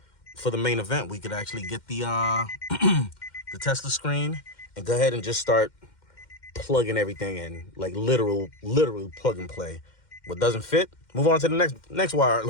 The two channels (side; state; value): right; late; 2.1 ms